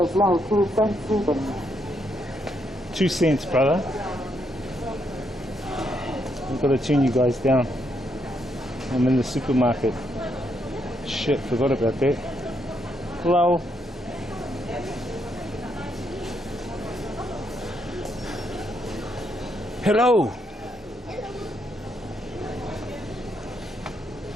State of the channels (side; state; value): both; normal; correlation 0.77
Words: now 2 cents even. 2 cents, brother. I've got to tune you guys down. I'm in the supermarket. Shit, forgot about that. Hello. Hello.